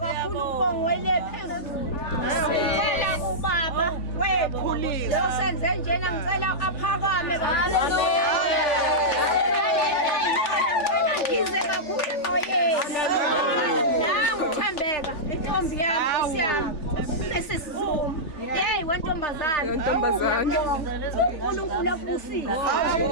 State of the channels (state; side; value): late; right; 3.3 ms